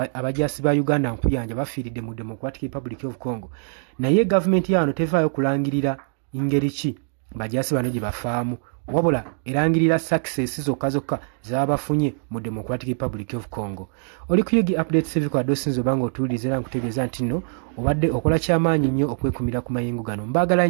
abajaasi ba Uganda nkuyanja bafiiridde mu Democratic Republic of Congo, naye gavumenti yaano tevaayo kulangirira ngeri ki bajaasi bano gye bafaamu, wabula erangirira success zokka z'abafunye mu Democratic Republic of Congo. Oli ku Yugi Updates TV kwa dosinzo obanga otuwuliriza era nkutegeeza nti nno obadde okola kyamaanyi nnyo okwekumira ku mayengo gano. Mbaagala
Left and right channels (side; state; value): left; silent; digital silence